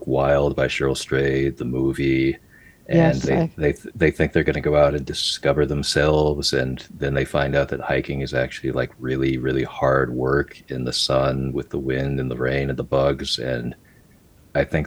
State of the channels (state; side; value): identical; both; correlation 1.00